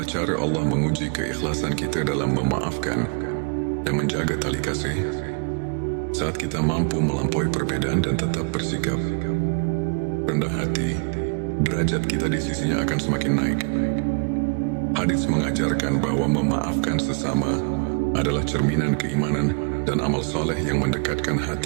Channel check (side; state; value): left; quieter; 37.5 dB